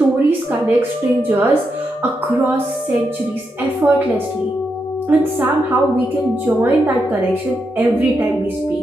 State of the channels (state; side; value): normal; both; correlation 0.84